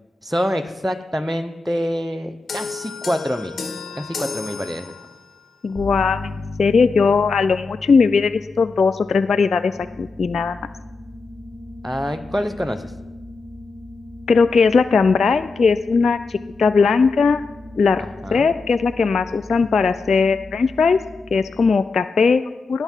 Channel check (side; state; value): right; quieter; 4.2 dB